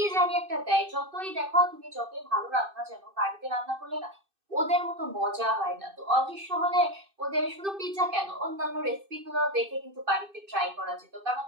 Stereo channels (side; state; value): left; late; 2.6 ms